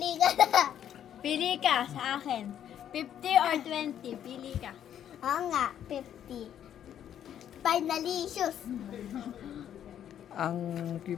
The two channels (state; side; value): quieter; right; 10.0 dB